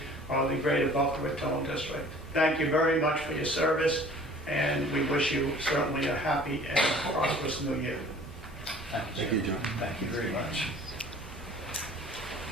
of the greater Boca Raton district. Thank you very much for your service, and we wish you certainly a happy and prosperous new year. Thank you, John. Thank you very much.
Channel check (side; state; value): both; normal; correlation 0.49